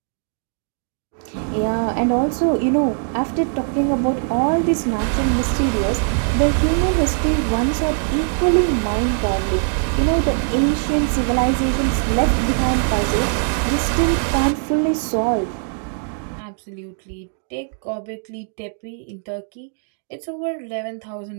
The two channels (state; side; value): silent; left; 65 dB below the other